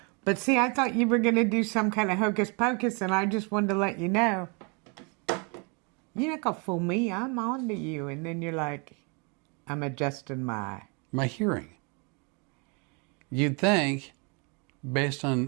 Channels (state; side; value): quieter; left; 33.2 dB